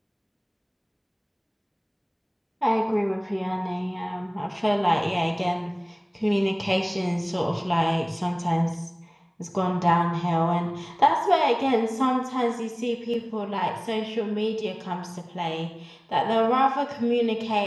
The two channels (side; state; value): both; identical; correlation 1.00